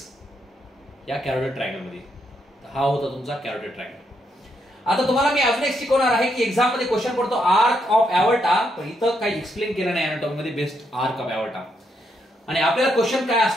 या कॅरोटिड ट्रायंगल मध्ये. हा होता तुमचा कॅरोटिड ट्रायंगल. आता तुम्हाला मी अजून एक शिकवणार आहे की एक्झाम मध्ये क्वेश्चन पडतो आर्क ऑफ एवर्टा, पण इथं काही एक्सप्लेन केलं नाही अनाटॉमी मध्ये बेस्ट आर्क ऑफ एवर्टा. आणि आपल्याला क्वेश्चन काय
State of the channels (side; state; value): both; normal; correlation 0.78